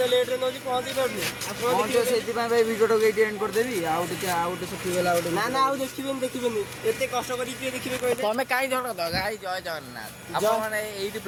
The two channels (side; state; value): both; identical; correlation 1.00